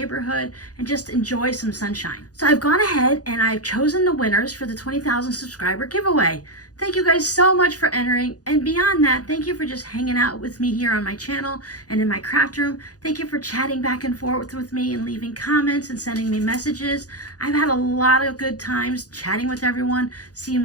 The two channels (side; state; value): right; late; 0.68 ms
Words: and just enjoy some sunshine. So I've gone ahead and I've chosen the winners for the 20,000 subscriber giveaway. Thank you guys so much for entering. And beyond that, thank you for just hanging out with me here on my channel and in my craft room. Thank you for chatting back and forth with me and leaving comments and sending me messages. I've had a lot of good times chatting with everyone, seeing